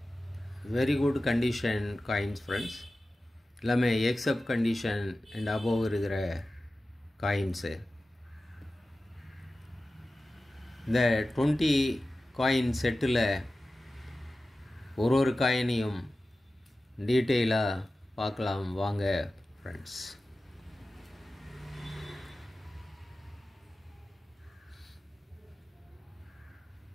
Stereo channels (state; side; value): normal; both; correlation 0.95